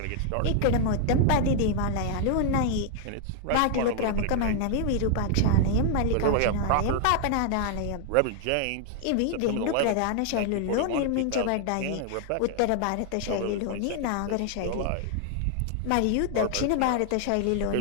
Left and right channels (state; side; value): different; both; correlation 0.00